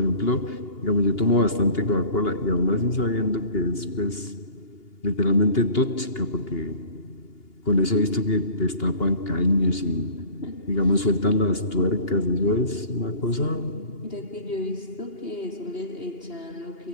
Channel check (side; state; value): right; late; 2.8 ms